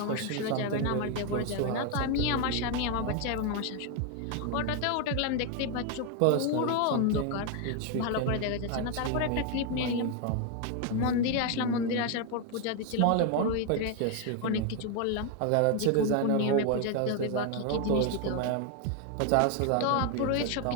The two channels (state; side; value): different; both; correlation 0.01